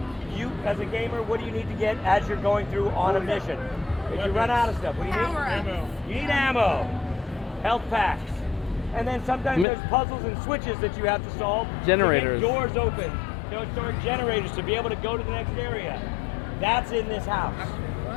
you, as a gamer, what do you need to get as you're going through on a mission? If you run out of stuff, what do you need? Ammo. You need ammo, health packs, and then sometimes there's puzzles and switches that you have to solve. Generators. To get doors open. Store generators to be able to go to the next area. That's in this house.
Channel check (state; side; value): drops out; right; at 9.7 s